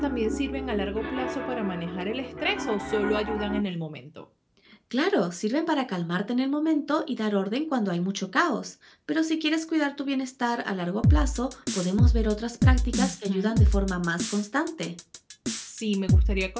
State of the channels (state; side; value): identical; both; correlation 1.00